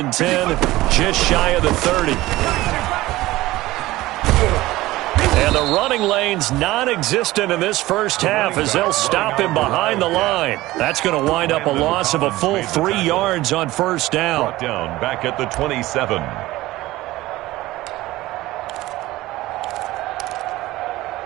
10, just shy of the 30. And the running lane's non-existent in this first half as they'll stop him behind the line. That's going to wind up a loss of a full 3 yards on first down. Brought down back at the 27.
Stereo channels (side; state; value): left; quieter; 17.7 dB